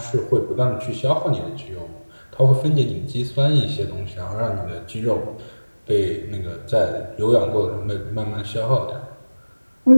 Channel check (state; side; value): inverted; both; correlation -1.00